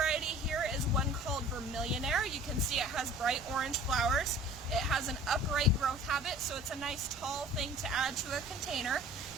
here is one called Vermillionaire. You can see it has bright orange flowers. It has an upright growth habit, so it's a nice tall thing to add to a container.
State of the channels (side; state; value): right; noise; rumble, 19 dB below the sound